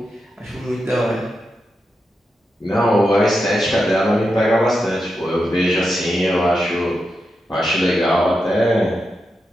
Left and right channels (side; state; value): both; normal; correlation 0.87